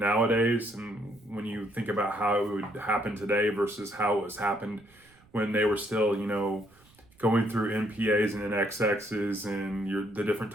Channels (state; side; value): noise; right; rumble, 30 dB below the sound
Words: And when you think about how it would happen today versus how it was happened when they were still, going through NPAs and NXXs and the different